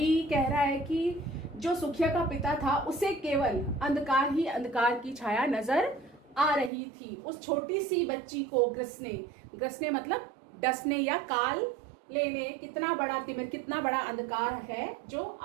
कह रहा है कि जो सुखिया का पिता था उसे केवल अंधकार ही अंधकार की छाया नजर आ रही थी। उस छोटी सी बच्ची को ग्रसने, ग्रसने मतलब डसने या काल लेने, कितना बड़ा तिमिर, कितना बड़ा अंधकार है जो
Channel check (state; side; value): drops out; left; at 6.7 s